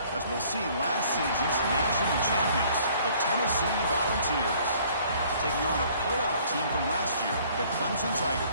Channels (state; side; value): inverted; both; correlation -0.57